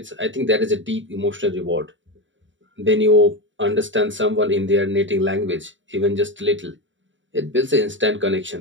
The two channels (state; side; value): late; left; 0.55 ms